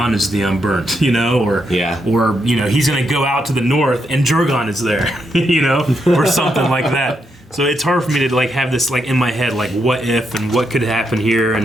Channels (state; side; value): normal; both; correlation 0.81